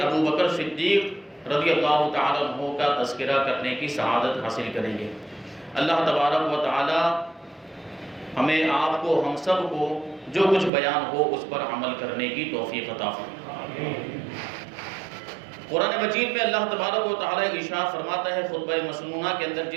ابو بکر صدیق رضی اللہ تعالیٰ عنہ کا تذکرہ کرنے کی سعادت حاصل کریں گے۔ اللہ تبارک و تعالی ہمیں، آپ کو، ہم سب کو جو کچھ بیان ہو اس پر عمل کرنے کی توفیق عطا فرمائے۔ قرآن مجید میں اللہ تبارک و تعالی ارشاد فرماتا ہے خطبہ مسنونہ کے اندر،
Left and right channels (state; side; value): drops out; left; at 10.7 s